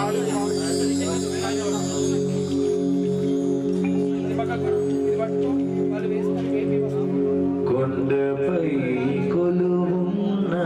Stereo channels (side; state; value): both; identical; correlation 1.00